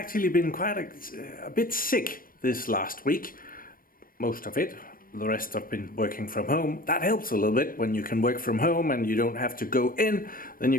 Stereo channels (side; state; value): right; late; 0.41 ms